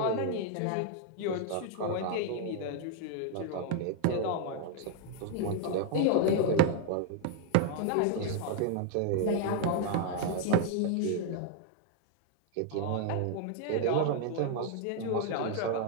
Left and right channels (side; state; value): both; different; correlation 0.00